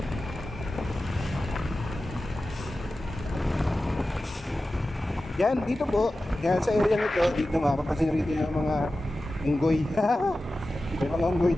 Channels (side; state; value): both; normal; correlation 0.94